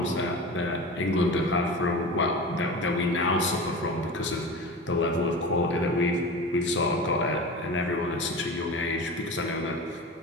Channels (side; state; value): both; normal; correlation 0.31